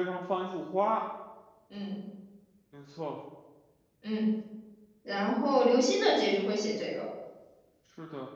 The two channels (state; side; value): identical; both; correlation 1.00